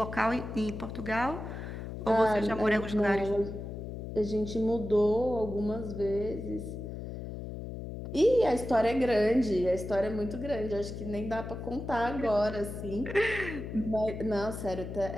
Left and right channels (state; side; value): noise; left; hum, 8 dB below the sound